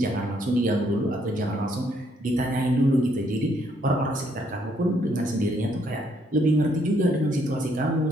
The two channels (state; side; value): normal; both; correlation 0.70